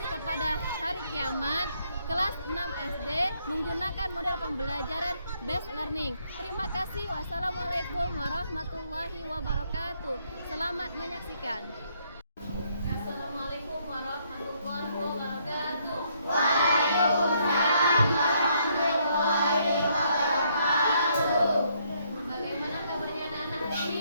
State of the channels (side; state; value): both; inverted; correlation -0.71